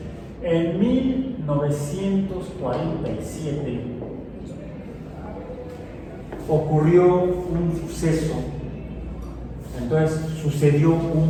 En 1947 ocurrió un suceso. Entonces sucedió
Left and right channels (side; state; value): both; identical; correlation 1.00